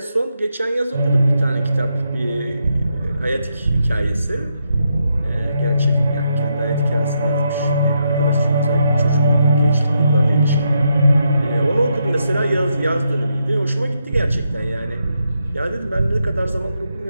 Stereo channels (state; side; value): inverted; both; correlation -0.81